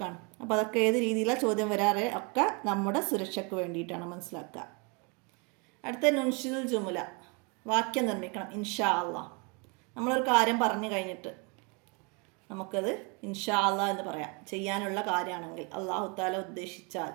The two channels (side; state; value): left; quieter; 31.8 dB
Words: അപ്പോൾ അതൊക്കെ ഏത് രീതിയിലാണ് ചോദ്യം വരാറ്, ഒക്കെ നമ്മുടെ സുരക്ഷയ്ക്ക് വേണ്ടിയിട്ടാണ്, മനസ്സിലാക്കുക. അടുത്ത നുൻഷിദുൽ ജുമുല, വാക്യം നിർമ്മിക്കണം. ഇൻഷാ അള്ളാ, നമ്മളൊരു കാര്യം പറഞ്ഞു കഴിഞ്ഞിട്ട് നമുക്കത് ഇൻഷാ അള്ളാ എന്ന് പറയാം. ചെയ്യാനുള്ള കാര്യമാണെങ്കിൽ അള്ളാഹു താല ഉദ്ദേശിച്ചാൽ